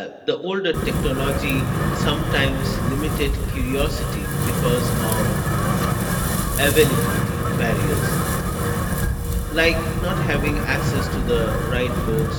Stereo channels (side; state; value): both; identical; correlation 1.00